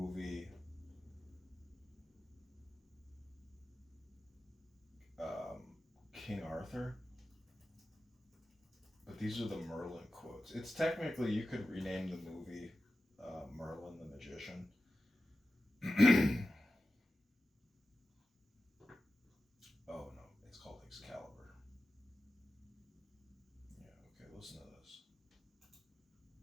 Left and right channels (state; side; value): normal; both; correlation 0.93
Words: King Arthur. But these are the Merlin quotes. It's technically, you could rename the movie Merlin the Magician. Oh no, it's called Excalibur. Yeah, okay, listen to